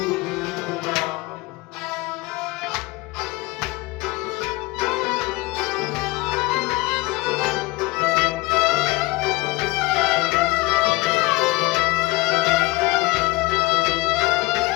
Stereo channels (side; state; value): right; quieter; 21.9 dB